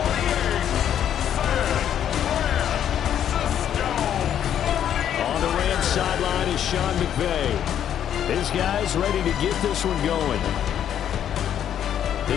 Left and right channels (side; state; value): right; quieter; 9.9 dB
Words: Sideline is Sean McVay. His guys ready to get this one going.